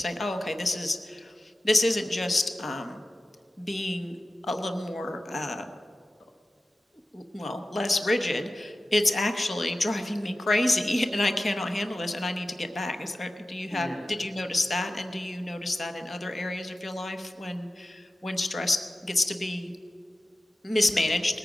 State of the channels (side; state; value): both; normal; correlation 0.95